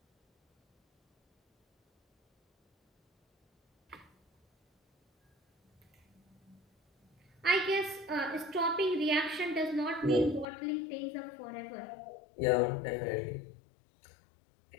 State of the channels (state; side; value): drops out; right; at 10.5 s